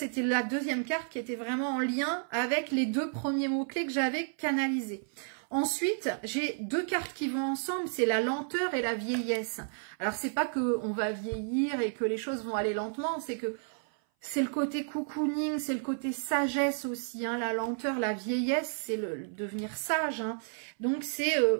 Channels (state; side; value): silent; left; 57 dB below the other